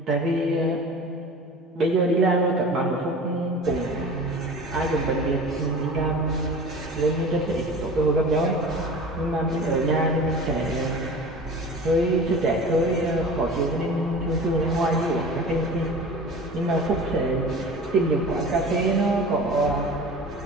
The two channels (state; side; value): normal; both; correlation 0.38